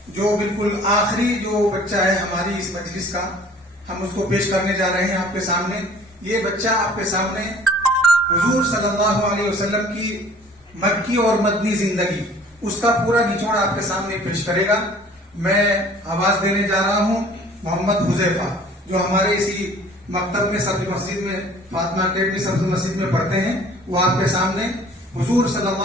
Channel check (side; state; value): both; normal; correlation 0.51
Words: جو بالکل آخری جو بچہ ہے ہماری اس مجلس کا، ہم اس کو پیش کرنے جا رہے ہیں آپ کے سامنے. یہ بچہ آپ کے سامنے حضور صلی اللہ علیہ وسلم کی مکی اور مدنی زندگی، اس کا پورا نچوڑ آپ کے سامنے پیش کرے گا. میں آواز دینے جا رہا ہوں محمد حذیفہ، جو ہمارے اسی مکتب میں سبز مسجد میں فاطمہ اکیڈمی سبز مسجد میں پڑھتے ہیں. وہ آپ کے سامنے حضور صلی